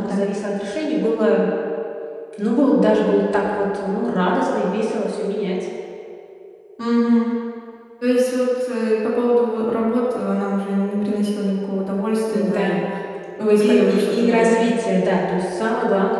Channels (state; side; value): identical; both; correlation 1.00